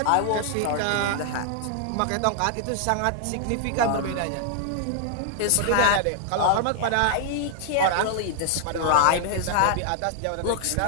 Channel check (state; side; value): different; both; correlation -0.01